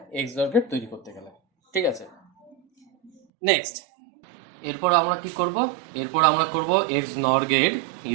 XOR গেট তৈরি করতে গেলে। ঠিক আছে, নেক্সট এরপর আমরা কি করব? এরপর আমরা করব XNOR gate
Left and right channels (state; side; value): drops out; left; at 3.1 s